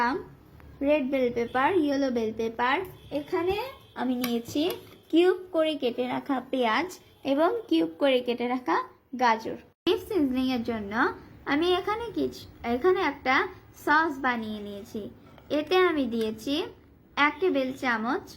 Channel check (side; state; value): both; identical; correlation 1.00